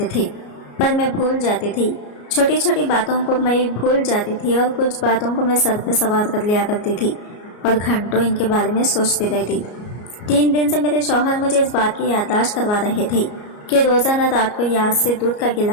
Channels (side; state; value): right; late; 33 ms